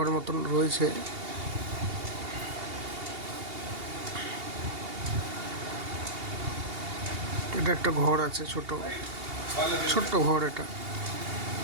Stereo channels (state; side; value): late; left; 2.8 ms